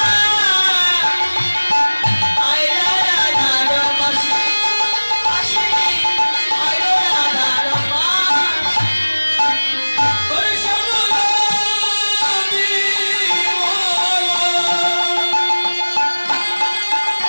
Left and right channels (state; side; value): inverted; both; correlation -1.00